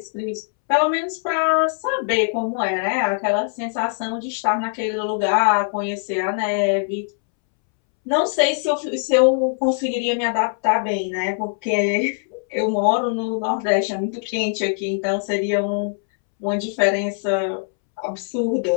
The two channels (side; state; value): right; silent; 64 dB below the other